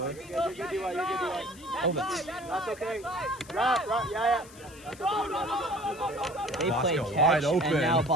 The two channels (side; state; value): left; noise; hiss, 21 dB below the sound